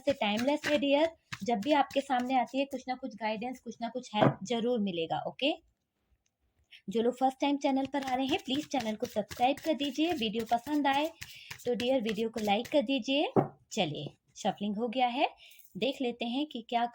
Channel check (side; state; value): both; identical; correlation 1.00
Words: टाइमलेस है डियर। जब भी आपके सामने आती है कुछ ना कुछ गाइडेंस, कुछ ना कुछ हेल्प जरूर मिलेगा। ओके, जो लोग फर्स्ट टाइम चैनल पर आ रहे हैं प्लीज चैनल को सब्सक्राइब कर दीजिए। वीडियो पसंद आए तो डियर वीडियो को लाइक कर दीजिए। चलिए, शफलिंग हो गया है, देख लेते हैं कि क्या